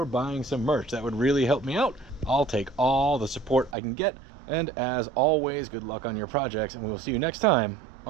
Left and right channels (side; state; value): left; drops out; at 3.8 s